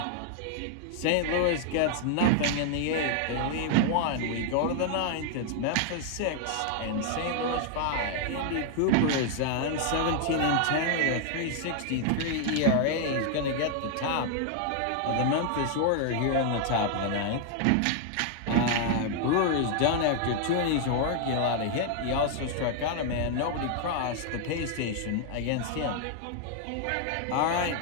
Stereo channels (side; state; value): both; different; correlation 0.00